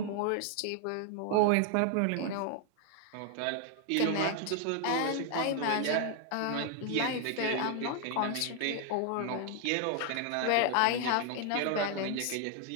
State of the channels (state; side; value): different; both; correlation 0.00